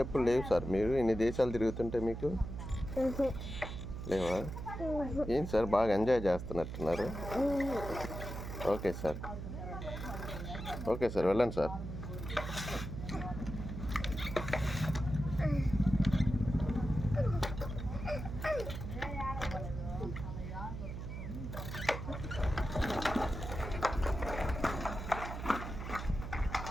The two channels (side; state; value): right; noise; hum, 7 dB below the sound